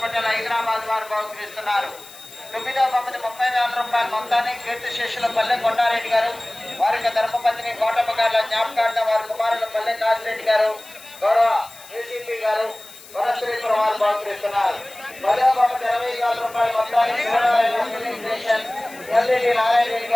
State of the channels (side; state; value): left; noise; hiss, 19 dB below the sound